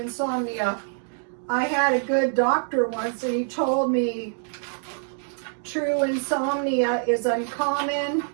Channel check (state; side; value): silent; left; 62 dB below the other